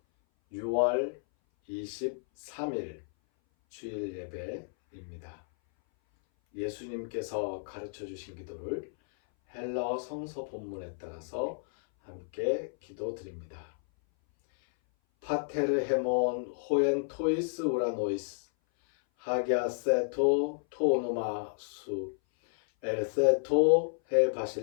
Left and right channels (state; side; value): silent; right; 57 dB below the other